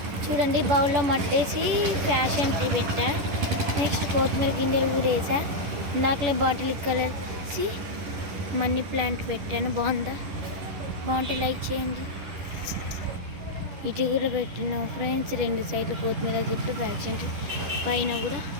చూడండి, బౌల్లో మట్టేసి ఫ్యాషన్ ట్రీ పెట్టా. నెక్స్ట్ కొత్తిమీర గింజలు కూడా వేసా. ఇందాకలే బాటిల్ కలిసి మనీ ప్లాంట్ పెట్టాను. బాగుంటే లైక్ చేయండి. ఇటు కూడా పెట్టిన ఫ్రెండ్స్, రెండు సైడ్లు కొత్తిమీర చెట్టు, ఫ్యాషన్ ట్రీ పైన కూడా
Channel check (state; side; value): late; left; 10 ms